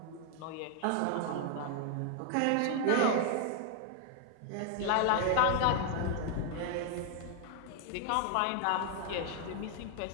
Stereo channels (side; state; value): both; different; correlation 0.00